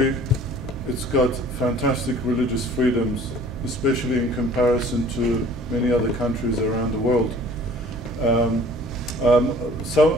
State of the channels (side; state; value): both; normal; correlation 0.51